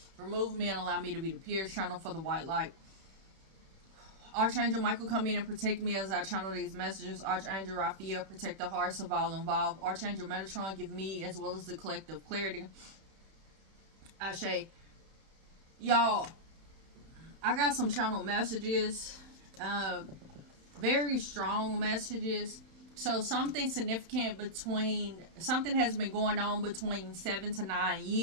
Remove me and allow me to be the pierced channel for the white light. Archangel Michael, come in and protect me as I channel these messages. Archangel Raphael, protect the hearts of all involved. Archangel Metatron, give me as well as the collective clarity. Ashe. Y'all, I got some channel messages, very strong messages. So something significant something has been going on between 7 to 9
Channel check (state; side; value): late; left; 31 ms